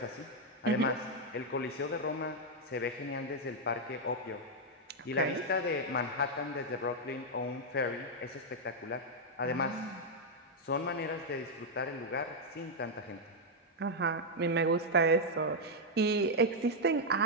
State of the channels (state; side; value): normal; both; correlation -0.01